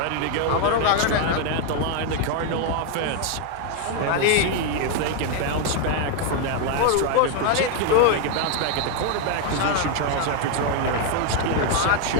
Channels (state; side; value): different; both; correlation 0.01